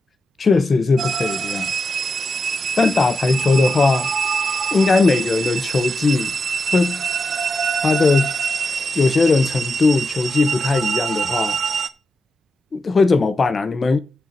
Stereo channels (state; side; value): normal; both; correlation 0.87